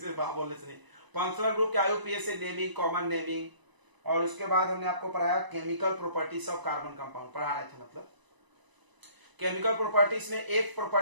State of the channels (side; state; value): left; late; 1.0 ms